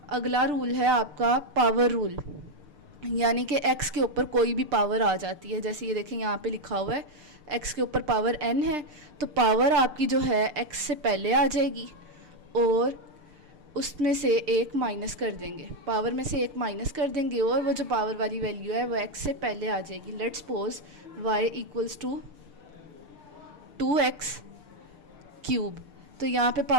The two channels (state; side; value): late; left; 6.7 ms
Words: अगला रूल है आपका पावर रूल, यानी कि x के ऊपर कोई भी पावर आ जाती है। जैसे ये देखें यहाँ पे लिखा हुआ है x के ऊपर पावर n है, तो पावर आपकी जो है x से पहले आ जाएगी और उसमें से एक माइनस कर देंगे, पावर में से एक माइनस कर देंगे, और वो जो पावर वाली वैल्यू है वो x से पहले आ जाएगी। Let's suppose y equals to 2x cube, तो यहाँ पे